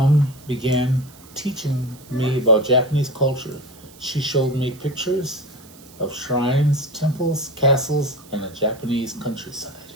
began teaching me about Japanese culture. She showed me pictures of shrines, temples, castles, and the Japanese countryside.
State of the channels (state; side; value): noise; right; hiss, 23 dB below the sound